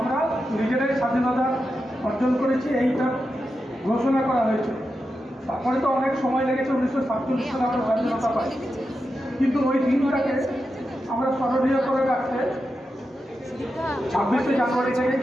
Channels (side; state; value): both; normal; correlation 0.89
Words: নিজেরাই স্বাধীনতা অর্জন করেছি, এইটা ঘোষণা করা হয়েছিল। তারপরে তো অনেক সময় লেগেছে, 1947 সালে আমরা স্বাধীনতা পাই। কিন্তু ওই দিনটাকে আমরা স্মরণীয় করে রাখতে 26শে জানুয়ারি থেকে